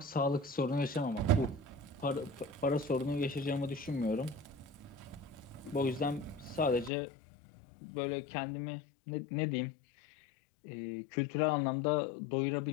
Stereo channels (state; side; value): drops out; right; at 6.9 s